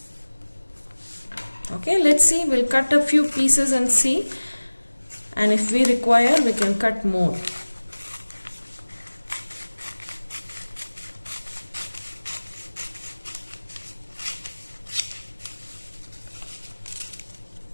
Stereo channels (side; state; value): both; inverted; correlation -1.00